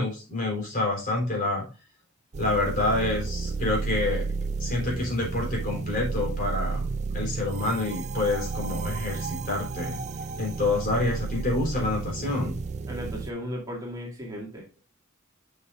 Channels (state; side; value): normal; both; correlation 0.38